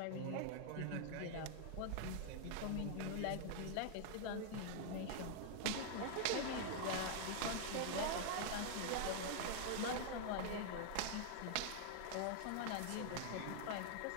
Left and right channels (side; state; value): both; different; correlation -0.01